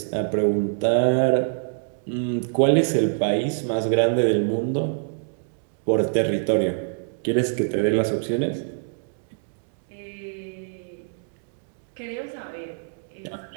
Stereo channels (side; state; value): left; silent; digital silence